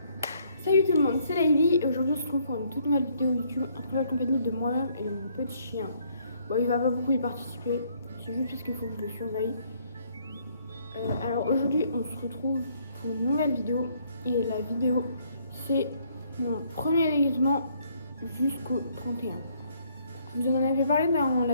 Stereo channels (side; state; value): both; inverted; correlation -0.67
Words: Salut tout le monde, c'est Laïli et aujourd'hui on se retrouve pour une toute nouvelle vidéo YouTube en très compagnie de moi-même et de mon petit chien. Bon, il va pas beaucoup y participer, c'est juste parce qu'il faut que je le surveille. Alors aujourd'hui on se retrouve pour une nouvelle vidéo et la vidéo c'est mon premier déguisement jusqu'au 31. Je vous en avais parlé dans